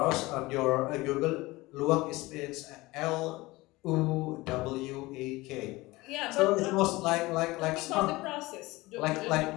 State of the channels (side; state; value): right; quieter; 20.7 dB